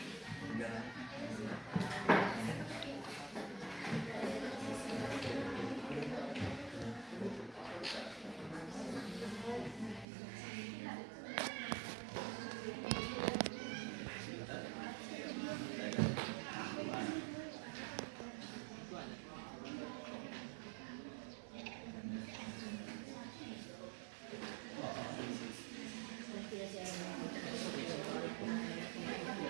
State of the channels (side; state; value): left; drops out; at 10.1 s